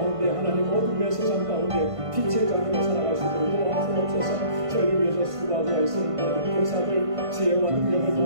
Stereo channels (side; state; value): left; late; 1.5 ms